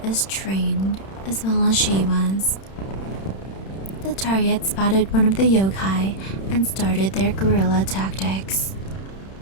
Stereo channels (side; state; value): right; late; 31 ms